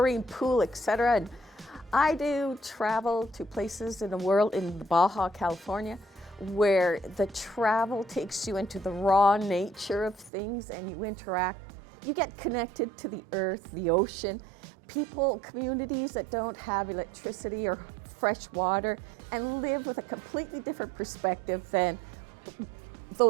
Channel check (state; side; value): drops out; left; at 10.3 s